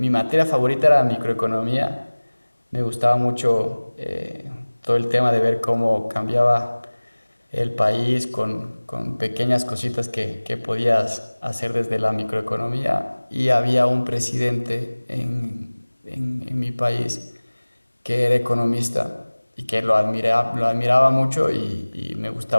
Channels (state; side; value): inverted; both; correlation -1.00